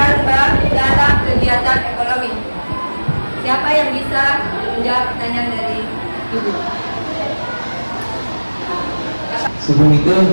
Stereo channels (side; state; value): both; inverted; correlation -1.00